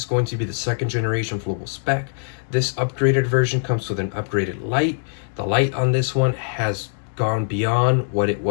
going to be the second generation Fluval Spec. This upgraded version comes with an upgraded light. The light on this one has gone beyond what it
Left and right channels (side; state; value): right; silent; 64 dB below the other